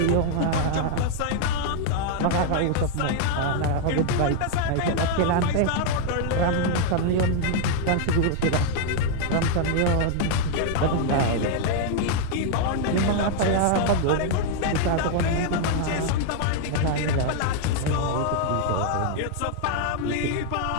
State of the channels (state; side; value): different; both; correlation 0.00